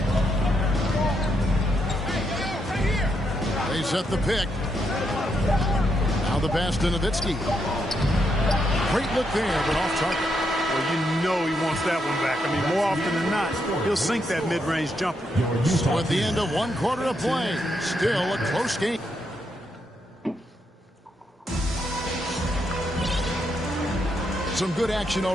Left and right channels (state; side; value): normal; both; correlation 0.80